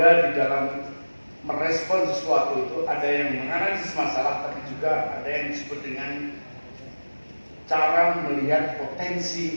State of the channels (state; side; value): inverted; both; correlation -1.00